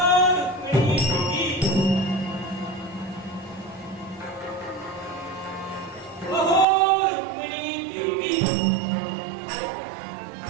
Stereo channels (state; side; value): drops out; left; at 6.7 s